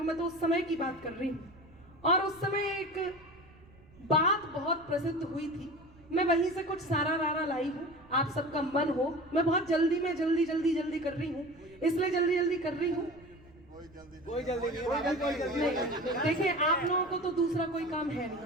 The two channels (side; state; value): right; noise; rumble, 25 dB below the sound